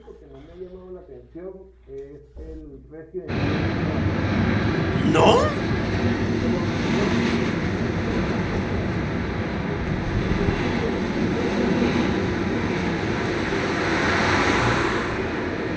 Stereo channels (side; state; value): both; identical; correlation 1.00